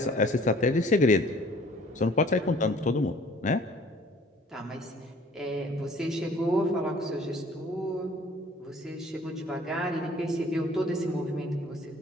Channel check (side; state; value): both; normal; correlation 0.53